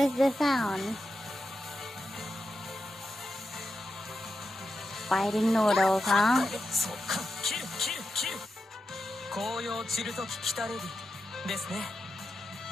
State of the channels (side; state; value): both; normal; correlation 0.89